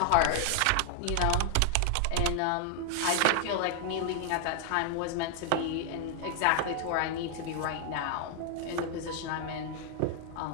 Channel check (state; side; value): different; both; correlation 0.00